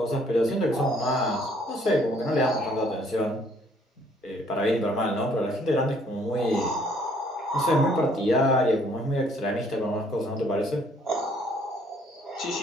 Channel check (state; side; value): normal; both; correlation 0.62